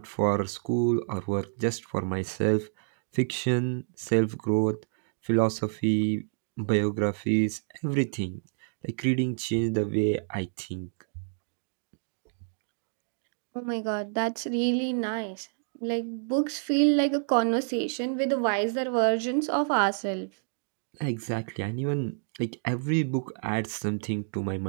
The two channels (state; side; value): silent; left; digital silence